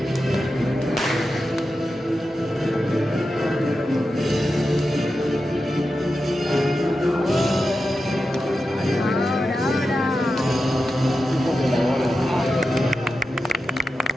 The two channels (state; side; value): normal; both; correlation 0.90